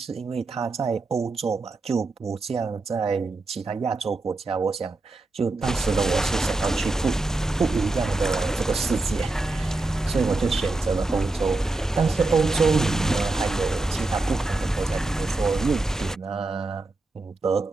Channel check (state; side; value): quieter; left; 3.2 dB